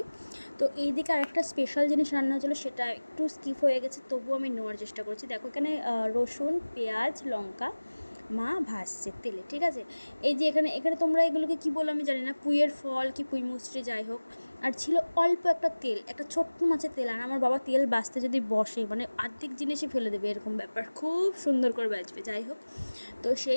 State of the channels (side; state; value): both; inverted; correlation -1.00